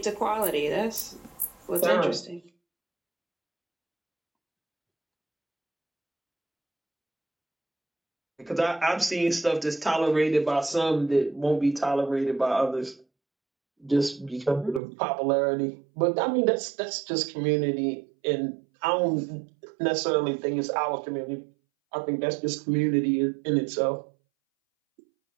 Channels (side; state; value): left; drops out; at 14.8 s